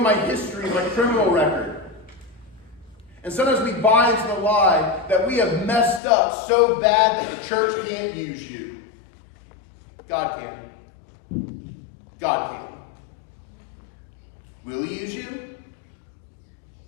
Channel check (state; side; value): drops out; right; at 6.0 s